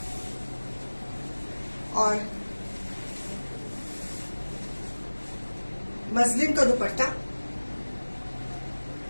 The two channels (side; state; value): both; inverted; correlation -1.00